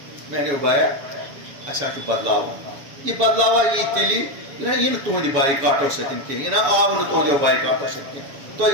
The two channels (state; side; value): late; left; 7.1 ms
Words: میں نے بایا اچھا بدلاو یہ بدلاوا یہ تیلی یہ تہند بائیکاٹو ستن کی یہ آو نا تہندو بائیکاٹو ستن تھی